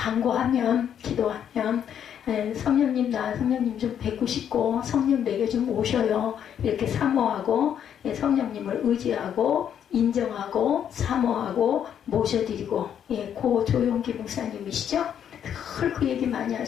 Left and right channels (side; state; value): right; quieter; 9.0 dB